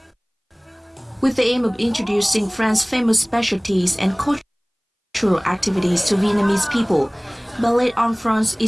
With the aim of introducing France's famous specialties and cultural activities to Vietnamese people, Ballet en France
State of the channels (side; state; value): both; identical; correlation 1.00